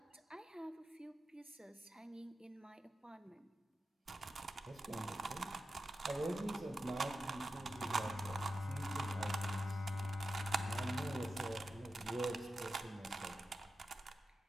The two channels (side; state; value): both; normal; correlation 0.92